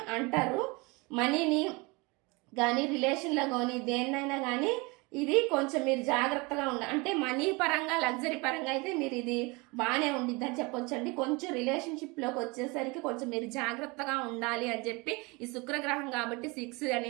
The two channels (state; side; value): quieter; left; 26.6 dB